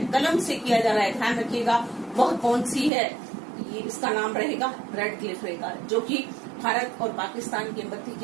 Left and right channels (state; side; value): drops out; left; at 2.9 s